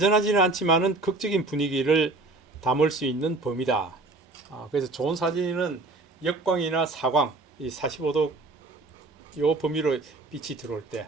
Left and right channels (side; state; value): left; quieter; 3.2 dB